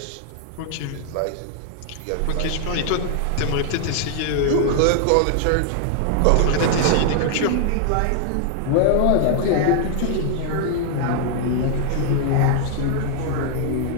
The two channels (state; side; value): different; both; correlation 0.00